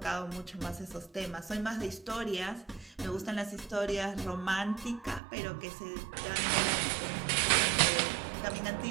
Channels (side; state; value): left; drops out; at 5.2 s